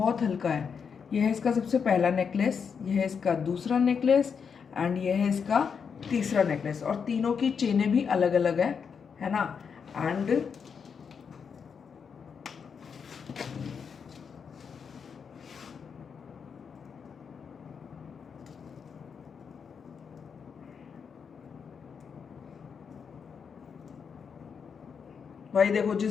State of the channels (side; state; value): right; quieter; 6.4 dB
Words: हल्का है। ये है इसका सबसे पहला नेकलेस, ये है इसका दूसरा नेकलेस, एंड ये है इसका तीसरा नेकलेस। और तीनों की चेनें भी अलग अलग है ना। एंड भाई देखो जिस